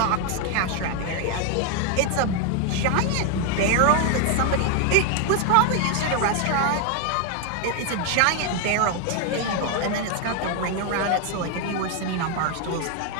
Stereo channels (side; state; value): both; different; correlation 0.01